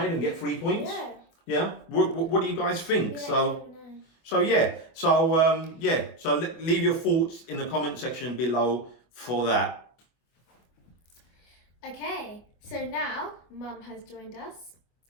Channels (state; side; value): late; right; 24 ms